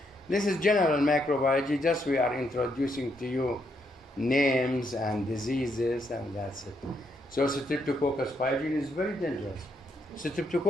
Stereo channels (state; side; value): normal; both; correlation 0.77